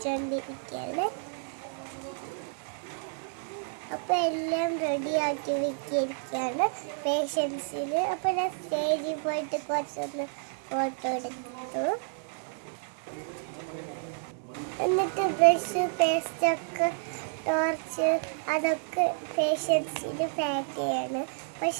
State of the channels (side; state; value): left; silent; digital silence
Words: അപ്പം എല്ലാം റെഡിയാക്കി വെച്ചിരിക്കുകയാണ് പേഷ്യൻസിന്. അപ്പം ഞാൻ സ്റ്റേജിൽ പോയിട്ട് കുറച്ചൊന്ന് ഫോട്ടോ എടുത്തു. എന്നിട്ട് ബ്രഷ്, പേസ്റ്റൊക്കെ, ടോർച്ച് അതൊക്കെ പേഷ്യൻസിന് പാക്ക് ചെയ്യാണ്. അപ്പം